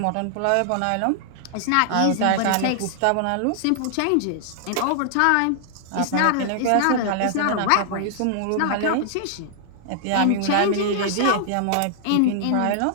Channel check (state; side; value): different; both; correlation -0.01